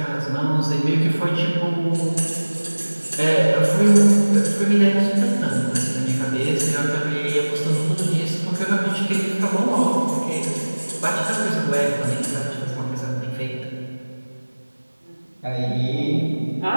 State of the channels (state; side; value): inverted; both; correlation -1.00